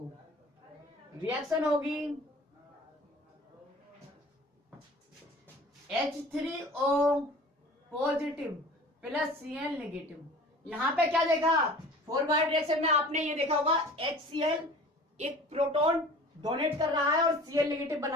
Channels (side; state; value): both; normal; correlation 0.43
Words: रिएक्शन होगी H3O positive plus Cl negative. यहां पे क्या देखा, फॉरवर्ड रिएक्शन में आपने ये देखा होगा, HCl एक प्रोटॉन डोनेट कर रहा है और Cl नेगेटिव